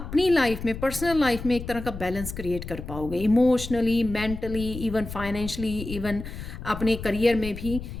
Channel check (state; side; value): noise; left; rumble, 9 dB below the sound